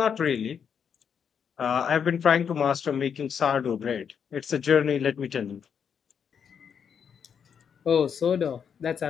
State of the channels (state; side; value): quieter; right; 7.3 dB